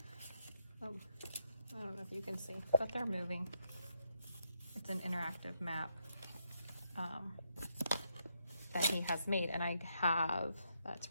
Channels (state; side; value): inverted; both; correlation -0.78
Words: I don't know if you can see, but they're moving. It's an interactive map that he has made, and I have, that's